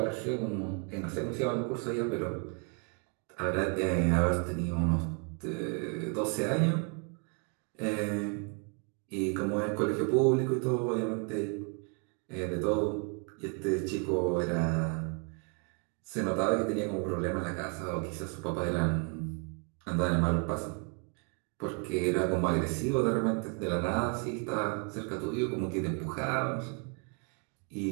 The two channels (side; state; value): left; quieter; 36.9 dB